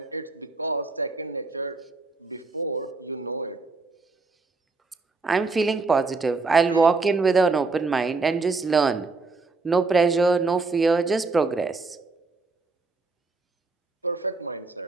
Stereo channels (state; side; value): quieter; left; 3.9 dB